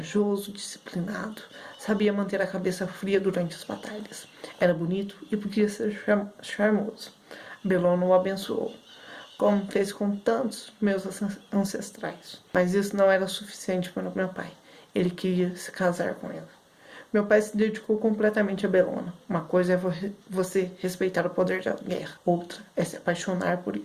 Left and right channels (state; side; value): identical; both; correlation 1.00